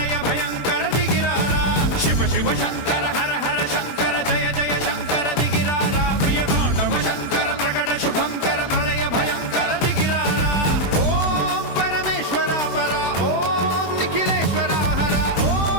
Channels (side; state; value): right; late; 21 ms